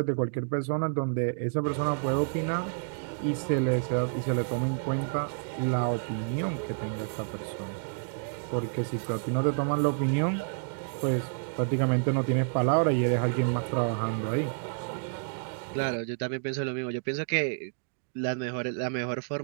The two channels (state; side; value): silent; left; digital silence